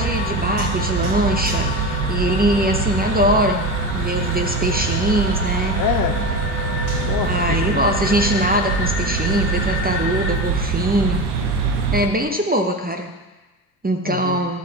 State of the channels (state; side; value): normal; both; correlation 0.23